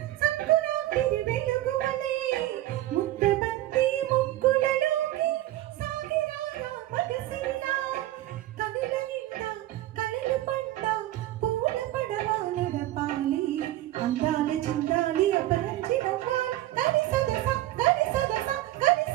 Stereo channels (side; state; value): left; quieter; 15.3 dB